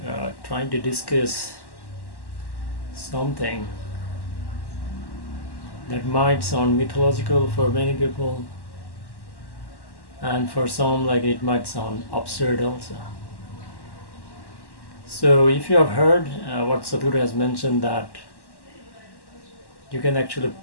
trying to discuss something that might sound mythological for many people, and for some like it might sound absurd also. So if you have heard what Sadhguru has mentioned, that you can actually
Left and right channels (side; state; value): right; late; 1.1 ms